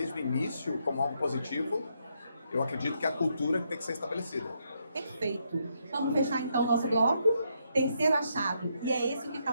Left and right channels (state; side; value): inverted; both; correlation -0.77